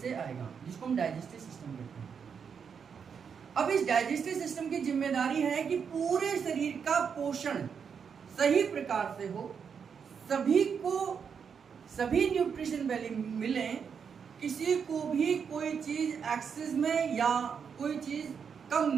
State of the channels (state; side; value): quieter; left; 6.7 dB